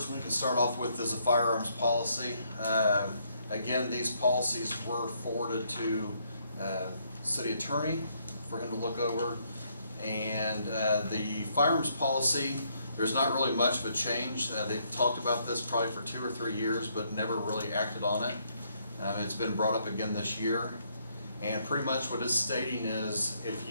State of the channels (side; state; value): both; inverted; correlation -0.72